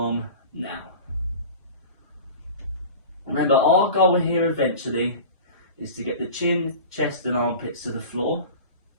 now. Remember, our goal here eventually is to get the chin, chest and armpits to the floor.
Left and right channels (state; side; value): inverted; both; correlation -0.36